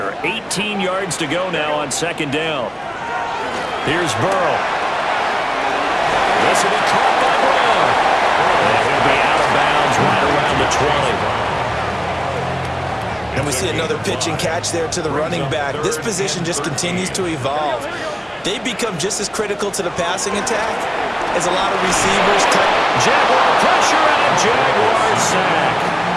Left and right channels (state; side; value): identical; both; correlation 1.00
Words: 18 yards to go now on second down. Here's Burrow. This will be caught by Brown. And he'll be out of bounds right around the 20. And we see another pitch and catch there to the running back. This position just continues to evolve. They become just as critical to the passing attack as a lot of receivers. Jaguar pressure and a Jaguar sack.